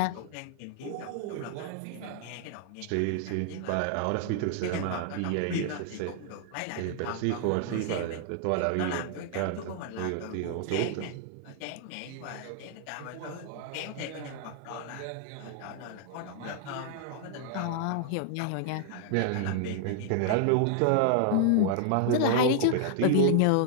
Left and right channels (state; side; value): different; both; correlation 0.00